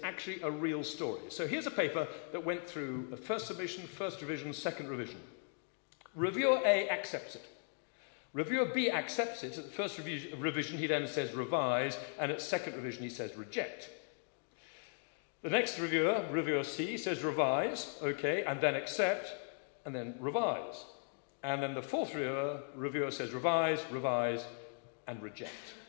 actually a real story. So here's a paper that went through a first submission, first revision, second revision. Reviewer A accepts it. Reviewer B accepts it. At the first revision, he then says revise, and at second revision, he says reject. The next reviewer, reviewer C, says revise, okay, and then accept, and then revise. And then the fourth reviewer says revise, revise, and reject.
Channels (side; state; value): right; silent; 52 dB below the other